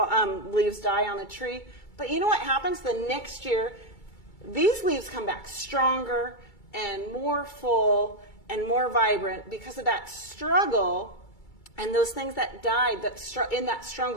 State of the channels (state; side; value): late; right; 2.3 ms